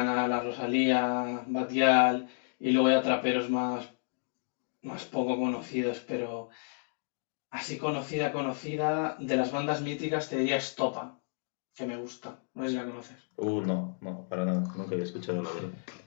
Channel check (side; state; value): right; quieter; 36.3 dB